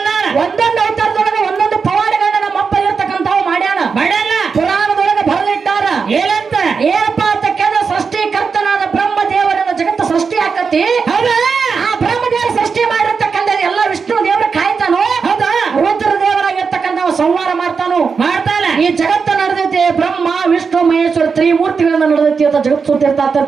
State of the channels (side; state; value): left; quieter; 5.4 dB